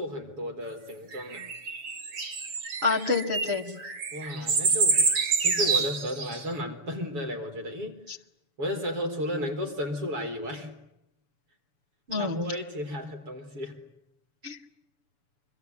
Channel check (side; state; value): left; late; 7.0 ms